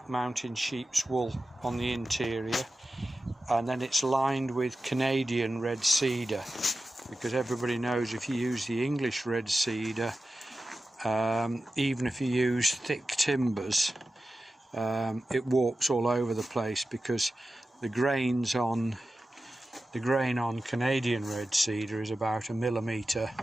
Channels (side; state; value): both; normal; correlation 0.93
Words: Mountain sheep's wool on the interior, and then it's lined with Canadian red cedar, because everybody knows if you use the English red cedar, even if you use thick timbers, it warps all over the place, because the grain on Canadian red cedar is about 1 millimetre